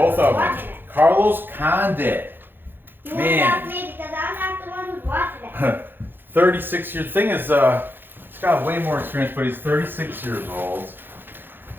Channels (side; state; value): left; late; 0.098 ms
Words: of them. Carlos Condit. You want to drop me because I'm not the one who's watching it. 36 years. Thing is, he's got way more experience, but he's 36 years old.